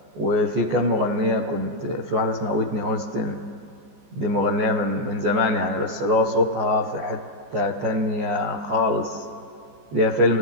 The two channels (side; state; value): left; late; 14 ms